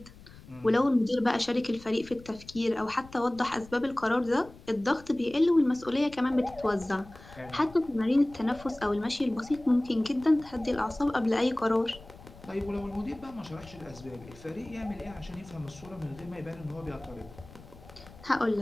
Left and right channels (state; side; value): noise; left; rumble, 20 dB below the sound